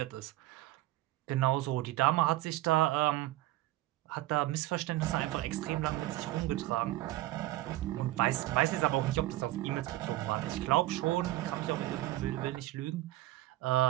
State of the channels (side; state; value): left; quieter; 16.5 dB